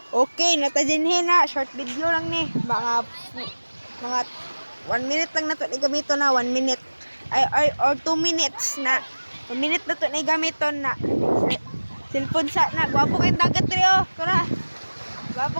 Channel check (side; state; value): both; inverted; correlation -1.00